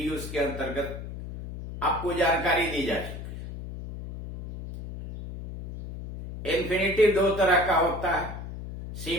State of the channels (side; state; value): left; noise; hum, 9 dB below the sound